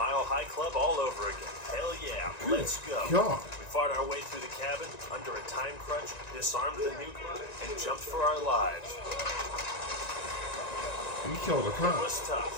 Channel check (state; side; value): late; right; 1.9 ms